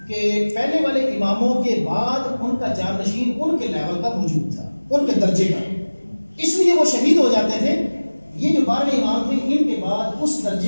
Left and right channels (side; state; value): both; inverted; correlation -1.00